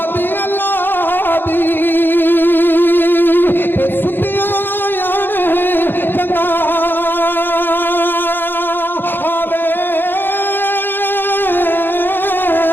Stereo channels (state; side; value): late; right; 0.099 ms